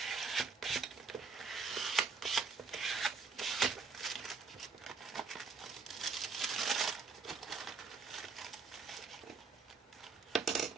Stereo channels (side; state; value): left; quieter; 4.8 dB